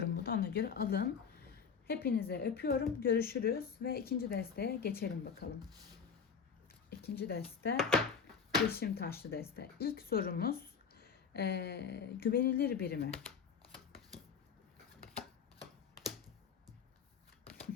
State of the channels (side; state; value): right; quieter; 6.3 dB